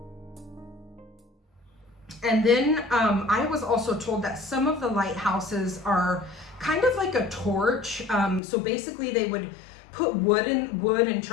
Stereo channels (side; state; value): right; drops out; at 8.4 s